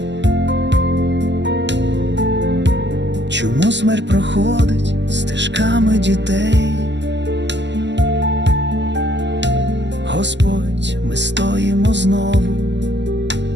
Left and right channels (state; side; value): late; left; 0.51 ms